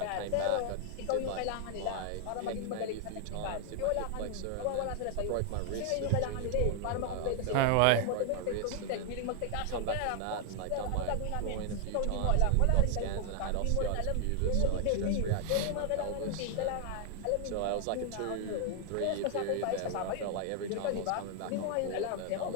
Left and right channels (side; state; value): both; different; correlation 0.00